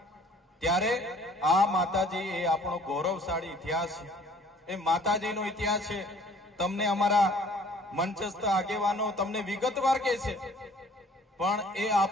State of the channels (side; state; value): both; normal; correlation 0.54